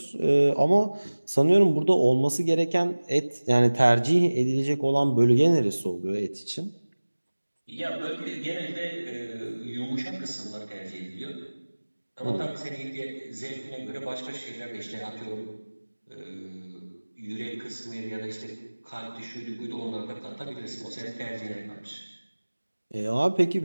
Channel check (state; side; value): inverted; both; correlation -1.00